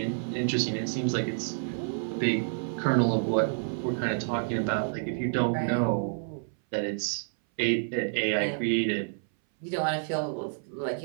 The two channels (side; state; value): left; silent; 59 dB below the other